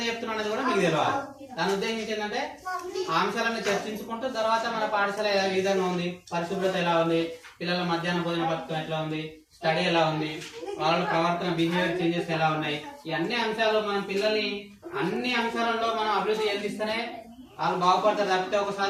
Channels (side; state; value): both; identical; correlation 1.00